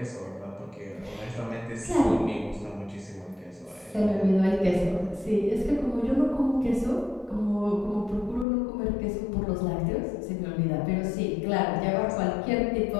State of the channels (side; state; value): right; drops out; at 8.5 s